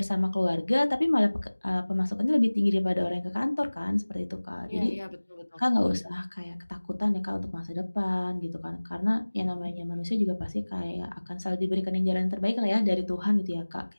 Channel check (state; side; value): inverted; both; correlation -1.00